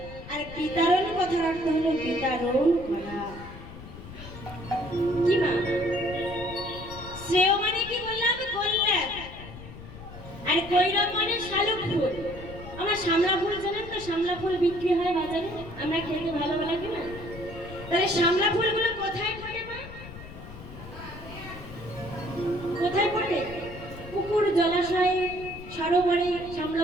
আর বিতরণ কথার অর্থ হলো বিতরণ করা। কি মা? শ্রেয় মানে কি বললাম? কল্যাণ। আর কৈরব মানে শালুক ফুল। আমার শামলা ফুল জানেন তো? শামলা ফুল বিক্রি হয় বাজারে, আমরা খেতে ভালো লাগে না? তাহলে শামলা ফুলগুলো কোথায় ফোটে মা? কোথায় ফোটে? পুকুর, জলাশয়ে, সরোবরে শামলা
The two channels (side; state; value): left; noise; rumble, 14 dB below the sound